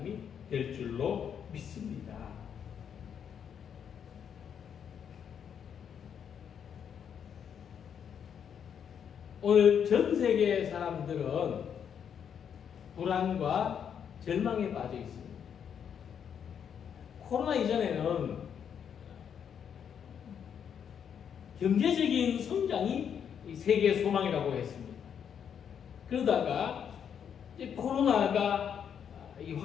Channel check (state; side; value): quieter; right; 8.0 dB